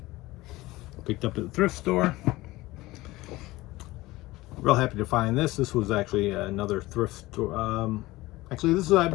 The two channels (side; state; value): right; quieter; 19.1 dB